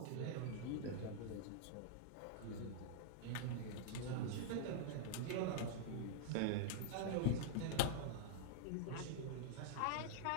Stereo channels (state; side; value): different; both; correlation -0.02